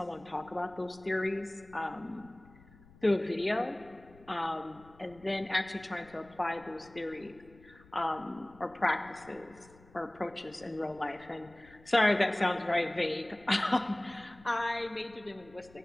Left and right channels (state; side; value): noise; left; rumble, 24 dB below the sound